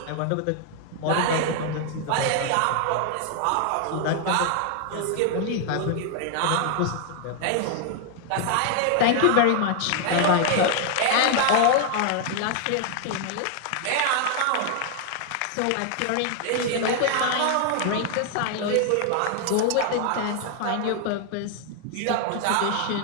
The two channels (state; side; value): different; both; correlation 0.00